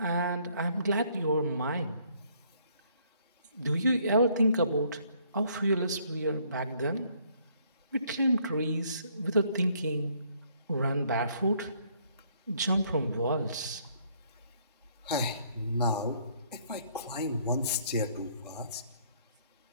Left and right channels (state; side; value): inverted; both; correlation -0.65